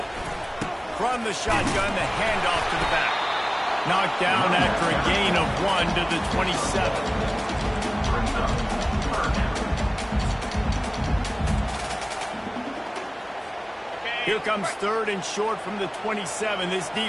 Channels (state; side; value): identical; both; correlation 1.00